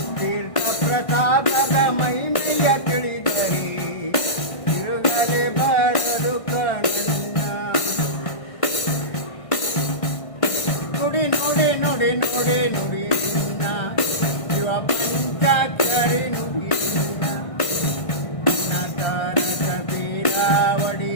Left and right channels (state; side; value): late; right; 1.6 ms